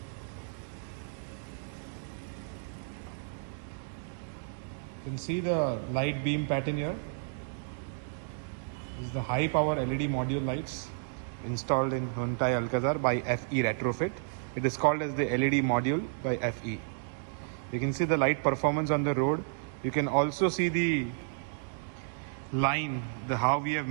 You can see the light beam pattern here. This is the high power LED module lights installed in Hyundai Alcazar by FE Retrofit. It is called as the LED module by FE. You can see the light performance on the road. You can also see the line, how we have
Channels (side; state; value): left; silent; digital silence